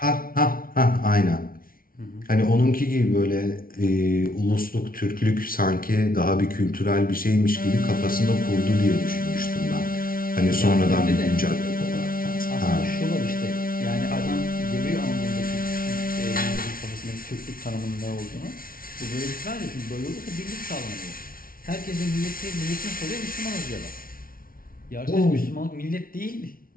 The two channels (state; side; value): late; right; 0.42 ms